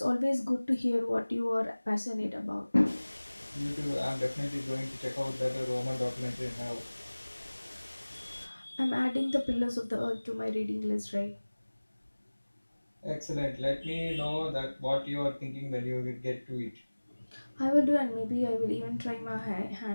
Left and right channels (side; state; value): both; inverted; correlation -1.00